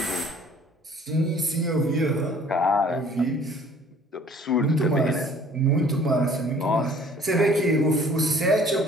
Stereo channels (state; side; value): normal; both; correlation 0.54